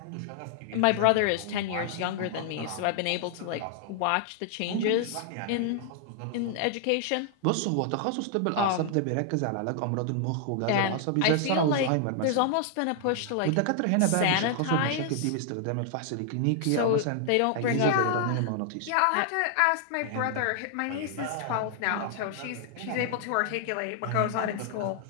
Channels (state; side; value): different; both; correlation 0.00